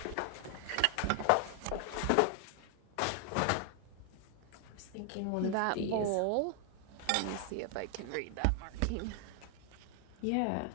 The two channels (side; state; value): both; different; correlation 0.00